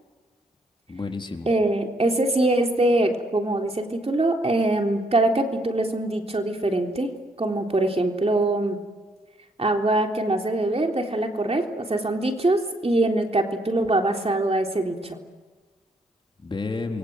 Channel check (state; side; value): normal; both; correlation 0.69